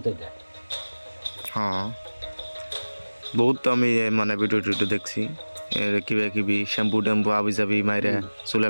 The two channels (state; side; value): inverted; both; correlation -1.00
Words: এটা। হ্যাঁ, বহুত আমি মানে ভিডিও টিডিও দেখছি, কিবা কিবি শ্যাম্পু ট্যাম্পু আবি যাবি মাইরে চুলে